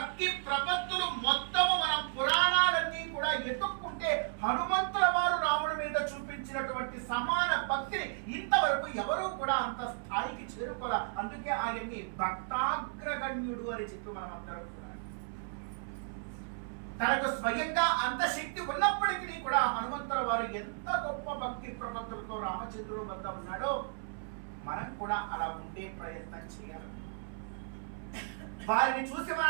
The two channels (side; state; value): left; silent; 55 dB below the other